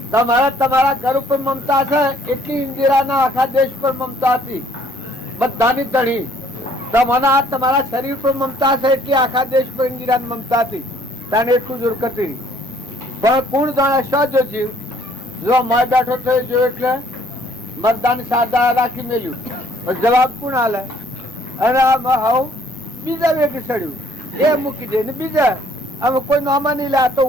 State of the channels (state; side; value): normal; both; correlation 0.62